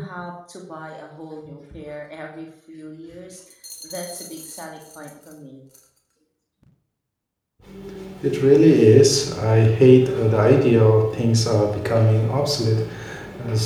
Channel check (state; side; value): identical; both; correlation 1.00